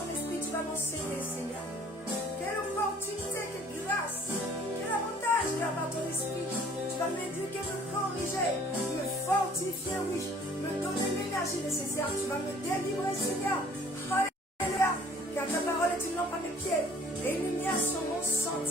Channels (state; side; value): normal; both; correlation 0.54